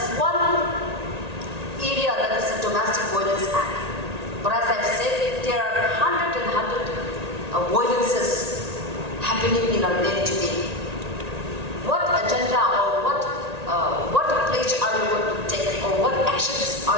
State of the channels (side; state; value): left; late; 1.8 ms